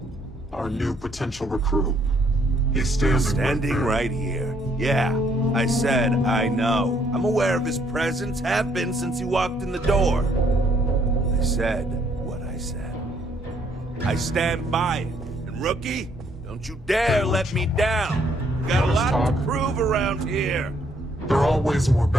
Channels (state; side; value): normal; both; correlation 0.68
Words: Our new potential recruit. He's standing right here. Yeah, I said I know. I'm aware of his presence, have been since he walked in the door. I said what I said. I stand by it. And rookie, don't you dare let me down. Got a lot to prove around here. There are always more